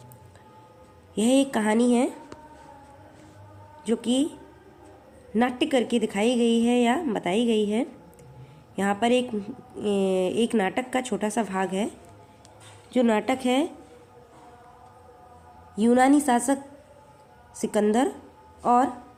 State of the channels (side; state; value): both; identical; correlation 1.00